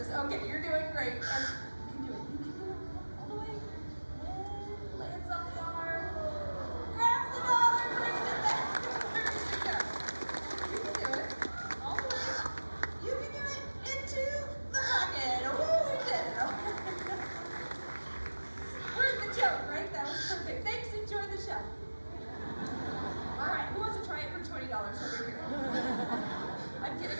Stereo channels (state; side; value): inverted; both; correlation -1.00